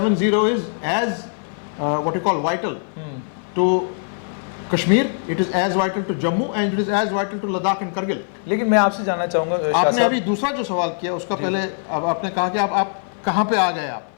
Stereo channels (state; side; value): silent; right; 57 dB below the other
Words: is as what you call vital to Kashmir, it is as vital to Jammu and it is as vital to Ladakh and Kargil. लेकिन मैं आपसे जानना चाहूंगा, आपने अभी दूसरा जो सवाल किया उसका पहले अब आपने कहा कि आप कहां पे आ गए आप।